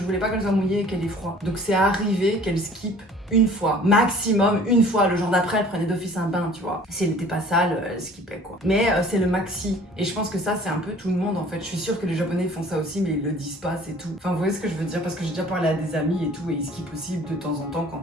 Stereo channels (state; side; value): normal; both; correlation 0.50